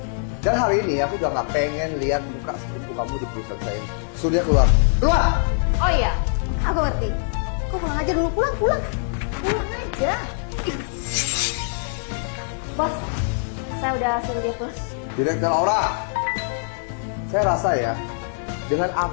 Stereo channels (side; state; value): right; silent; digital silence